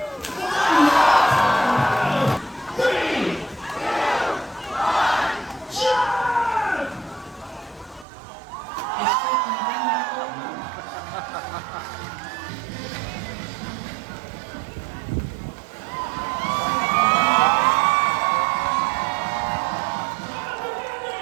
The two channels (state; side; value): drops out; left; at 8.1 s